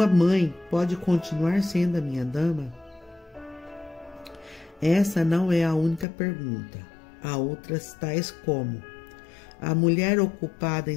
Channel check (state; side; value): drops out; right; at 6.1 s